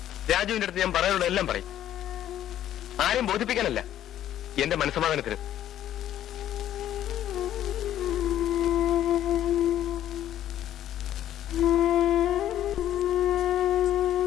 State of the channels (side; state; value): right; quieter; 11.7 dB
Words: രാജുവിന്റെ അടുത്ത് ഞാൻ പറയാനുള്ള എല്ലാം പറയും. ആരെയും ബോധിപ്പിക്കാനല്ല, എന്റെ മനസ്സമാധാനത്തിന്.